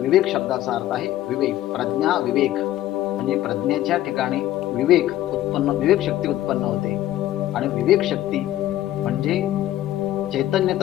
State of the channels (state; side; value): quieter; right; 13.8 dB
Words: विवेक शब्दाचा अर्थ आहे विवेक. प्रज्ञा विवेक म्हणजे प्रज्ञेच्या ठिकाणी विवेक शक्ती उत्पन्न होते. आणि विवेक शक्ती म्हणजे चैतन्य